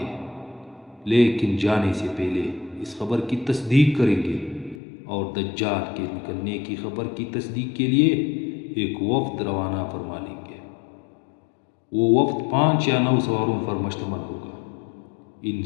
لیکن جانے سے پہلے اس خبر کی تصدیق کریں گے اور دجال کے نکلنے کی خبر کی تصدیق کے لیے ایک وفد روانہ فرما لیں گے۔ وہ وفد 5 یا 9 سواروں پر مشتمل ہوگا۔ ان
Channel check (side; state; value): right; drops out; at 4.8 s